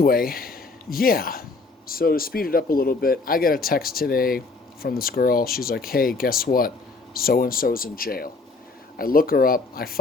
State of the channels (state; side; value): quieter; right; 3.8 dB